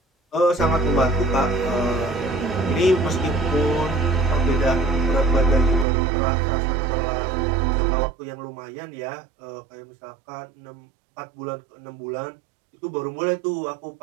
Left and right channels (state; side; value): drops out; left; at 5.9 s